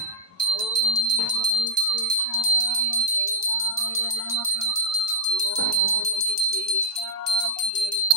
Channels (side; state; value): both; normal; correlation -0.06